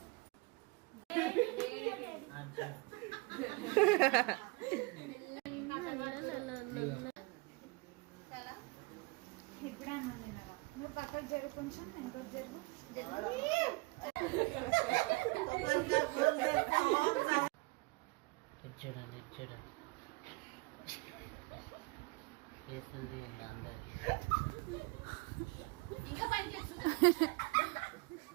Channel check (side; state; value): left; quieter; 25.9 dB